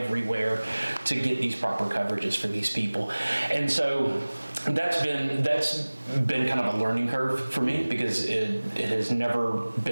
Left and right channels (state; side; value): inverted; both; correlation -1.00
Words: to get these proper coverages for these people. And so that's been kind of a learning curve for me, because it has never